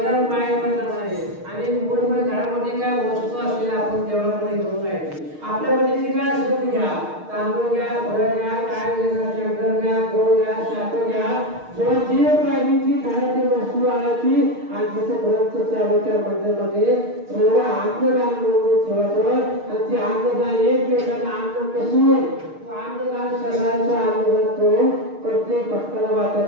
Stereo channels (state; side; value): late; left; 6.5 ms